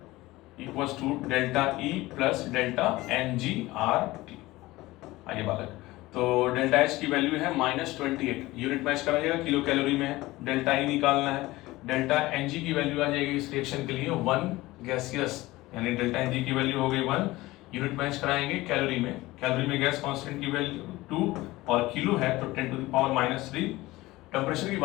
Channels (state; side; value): quieter; right; 19.0 dB